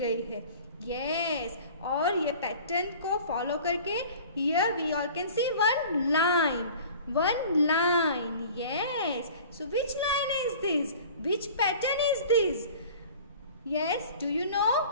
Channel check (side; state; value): both; inverted; correlation -0.44